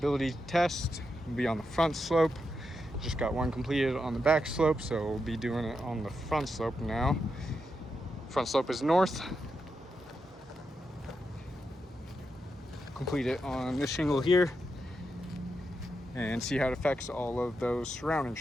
test. We'll be on the front slope. Just got one completed on the back slope, so we'll be doing it on the front slope now. Front slope is north. Complete it on this shingle here and see how it affects all of those surrounding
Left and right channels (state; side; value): normal; both; correlation 0.85